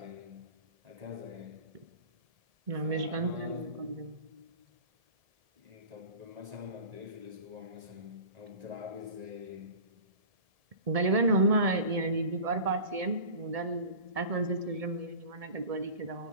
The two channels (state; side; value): late; left; 1.7 ms